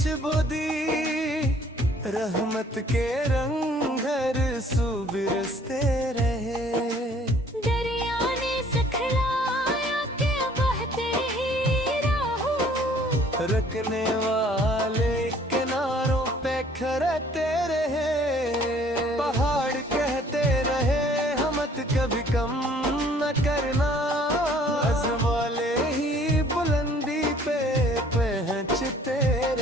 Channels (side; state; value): both; normal; correlation 0.57